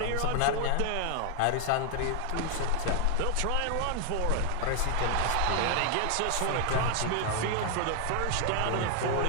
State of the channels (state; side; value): different; both; correlation 0.00